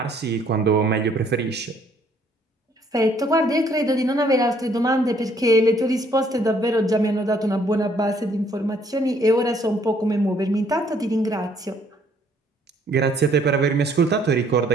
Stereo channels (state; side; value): normal; both; correlation 0.64